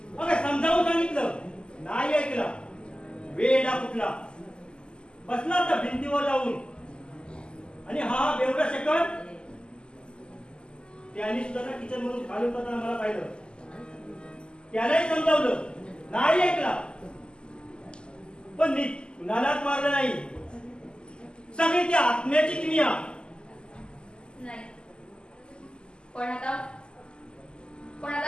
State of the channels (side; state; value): right; late; 0.049 ms